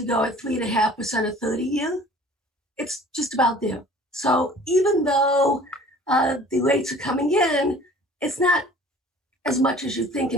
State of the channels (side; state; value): both; normal; correlation 0.49